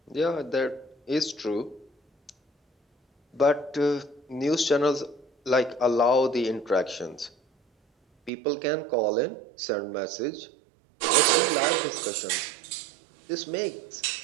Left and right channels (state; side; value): drops out; left; at 8.3 s